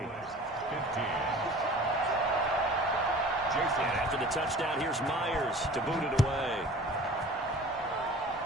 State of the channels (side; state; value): both; normal; correlation 0.44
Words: 15. Jason. And after the touchdown, here's Myers to boot it away.